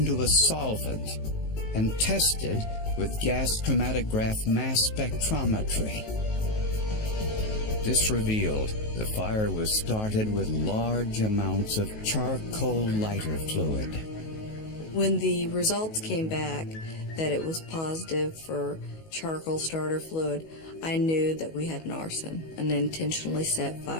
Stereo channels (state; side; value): late; right; 19 ms